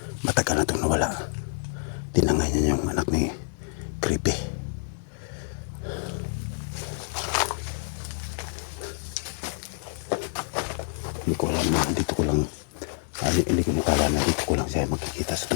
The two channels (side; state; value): right; silent; digital silence